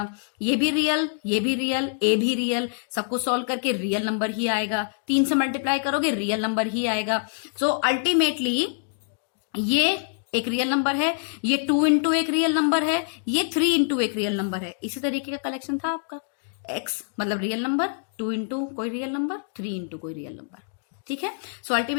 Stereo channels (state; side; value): silent; right; digital silence